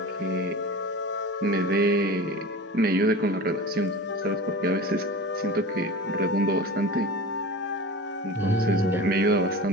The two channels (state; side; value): normal; both; correlation 0.33